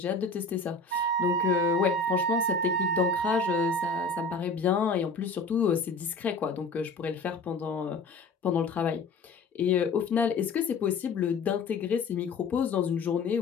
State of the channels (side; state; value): right; quieter; 3.7 dB